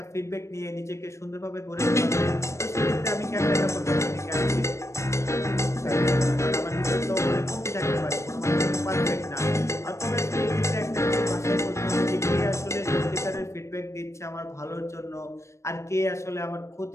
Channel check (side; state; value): right; late; 0.14 ms